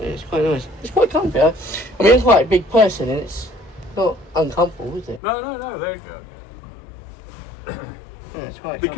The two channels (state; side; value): drops out; right; at 5.2 s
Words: it's quite nice. It's quite comfy. I mean, I'm quite a big person and it's not uncomfortable, is it? No, there you go. Yeah, it's quite The